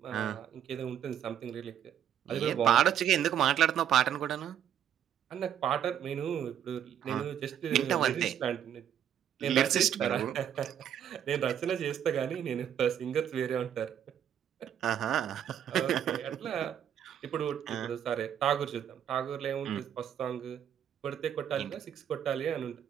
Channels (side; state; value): left; quieter; 9.5 dB